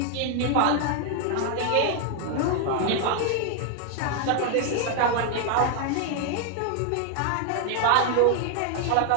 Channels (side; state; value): both; different; correlation 0.00